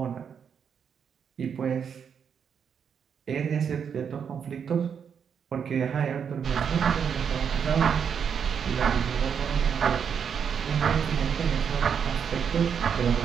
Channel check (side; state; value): left; quieter; 7.3 dB